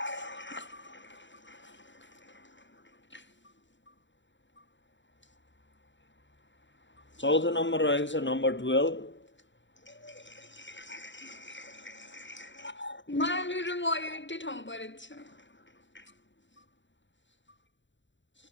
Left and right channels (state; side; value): late; right; 0.54 ms